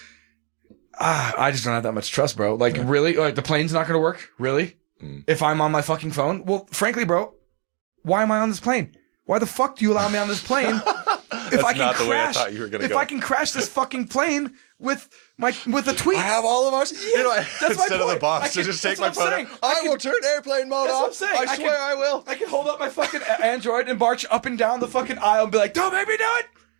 I just don't have that much trust, bro. Like, really? Like, the plane's not going to work? Really? If I'm on my fucking phone? Well, frankly, bro, why am I on this plane? Why the fuck do you allow me on this plane? That's not the way I thought you were going to go. If I can crash this fucking plane with a tweet. I have all of ours. Yeah, that's my instead of the point. box to just take my phone out. I will turn airplane mode That's off. what I'm saying. I swear I will. I can hold up my fucking Android and march up and down the fucking aisle and be like, don't make me do it.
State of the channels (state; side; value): quieter; left; 38.3 dB